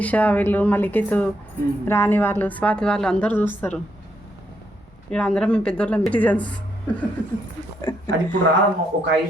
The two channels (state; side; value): normal; both; correlation 0.77